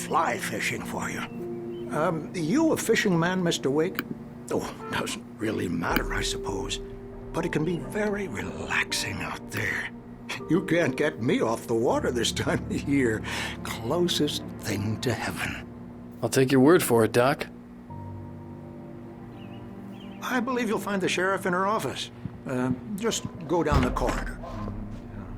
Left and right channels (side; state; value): both; identical; correlation 1.00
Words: fishing for you. You a fishing man, Mr. Wake? Oh, doesn't really matter, I suppose. But it can be very relaxing out there. You can't get me off the water this time of year. Closest thing to heaven. I'll take your word for it, Doc. I believe you'll find the sheriff in her office. Just go down the corridor.